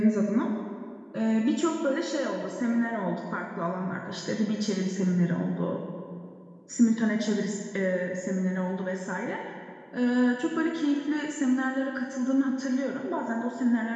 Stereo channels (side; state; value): both; identical; correlation 1.00